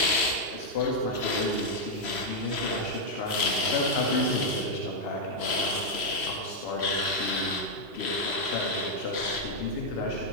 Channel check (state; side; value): late; right; 3.0 ms